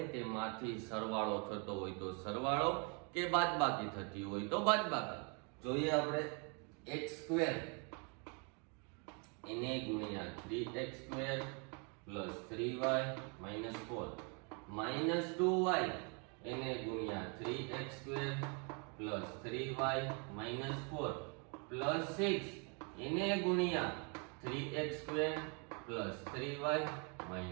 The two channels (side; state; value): left; quieter; 35.5 dB